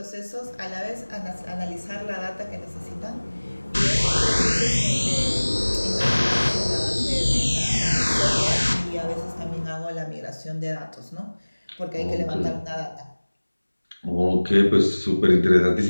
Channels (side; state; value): both; inverted; correlation -1.00